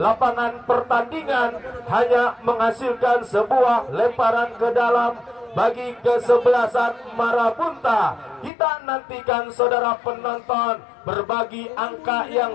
pertandingan hanya menghasilkan sebuah lemparan ke dalam bagi kesebelasan Marabunta. Kita nantikan, saudara penonton, berbagi angka yang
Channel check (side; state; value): right; drops out; at 8.5 s